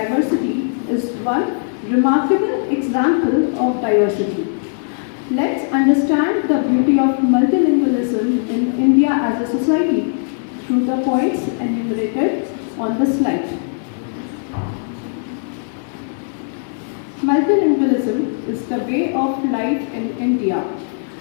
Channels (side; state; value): right; silent; digital silence